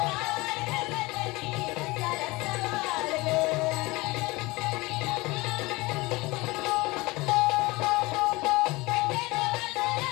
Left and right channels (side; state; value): right; quieter; 22.5 dB